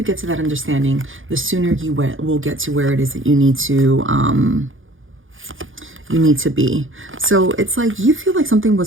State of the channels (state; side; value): late; left; 0.58 ms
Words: get to that understanding, the sooner you will get to where it is that you need to be. So it's like you feel like something